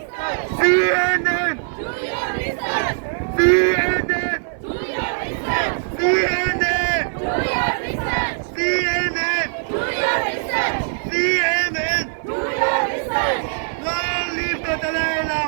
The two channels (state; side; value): silent; left; 56 dB below the other